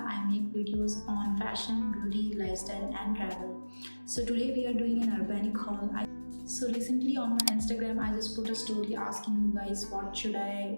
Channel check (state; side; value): inverted; both; correlation -1.00